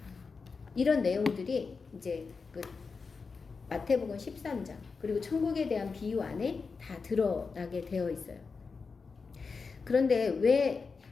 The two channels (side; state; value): right; quieter; 4.8 dB